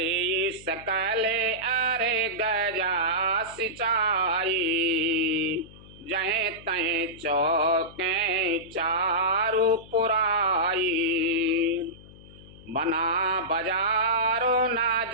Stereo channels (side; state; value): left; noise; hum, 20 dB below the sound